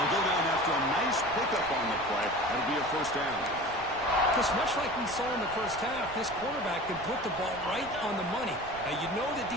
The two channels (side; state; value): right; noise; rumble, 17 dB below the sound